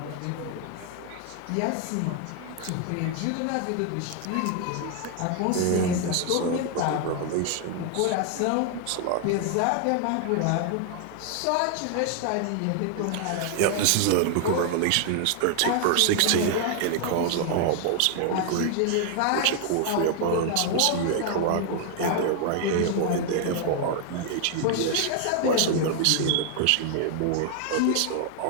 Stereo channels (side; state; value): both; different; correlation 0.00